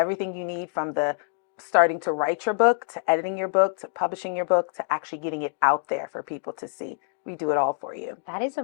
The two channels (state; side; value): silent; right; digital silence